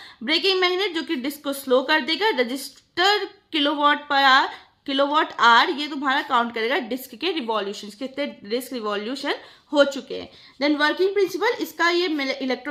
ब्रेकिंग मैग्नेट जो कि डिस्क को स्लो कर देगा। रजिस्टर किलोवाट आवर ये तुम्हारा काउंट करेगा डिस्क के रिवॉल्यूशन, कितने डिस्क रिवॉल्यूशन हो चुके हैं। देन वर्किंग प्रिंसिपल, इसका ये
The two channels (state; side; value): identical; both; correlation 1.00